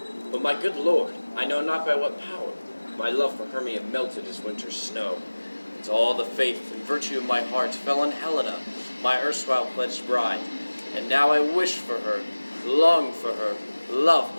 But my good lord, I know not by what power, my love for Hermia melted as winter's snow. And all the faith and virtue of my heart fell on Helena, my erstwhile pledged bride. And now I wish for her, long for her, love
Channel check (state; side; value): inverted; both; correlation -1.00